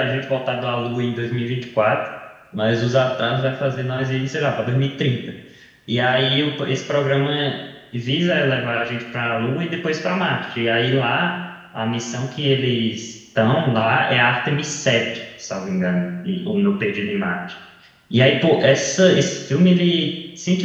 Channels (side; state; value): both; identical; correlation 1.00